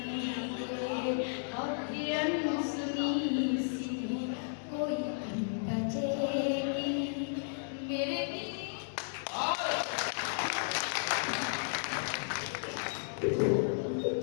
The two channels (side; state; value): right; silent; digital silence